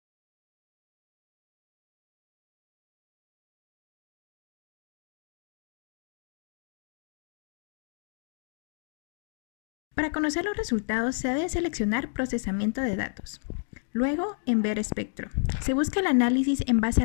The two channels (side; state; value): right; silent; digital silence